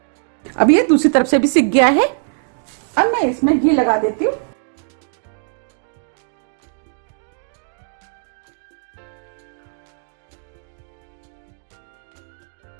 अब ये दूसरी तरफ से भी सिक गया है। अब मैं इसमें घी लगा देती हूँ।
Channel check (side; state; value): left; silent; digital silence